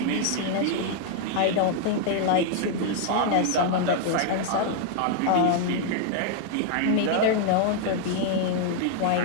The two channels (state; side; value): different; both; correlation -0.01